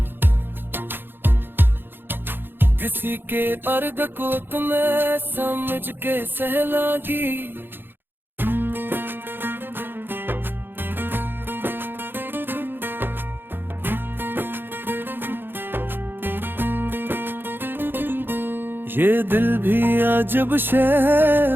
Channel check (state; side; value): late; left; 0.10 ms